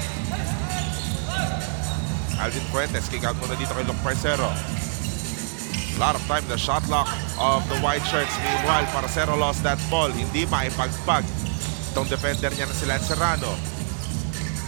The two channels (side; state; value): left; silent; digital silence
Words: Alvin Fuentes, kick out muna dito kay Luke Parcero. A lot of time, the shot clock of the white shirts. Meanwhile, Parcero lost that ball. Hindi maipagpag itong defender niya na si Lance Serrano.